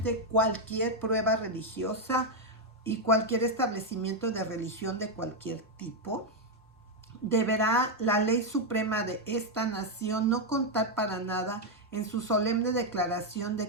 cualquier prueba religiosa y cualquier establecimiento de religión de cualquier tipo. Deberá la ley suprema de esta nación no contar para nada en su solemne declaración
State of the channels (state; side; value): normal; both; correlation 0.02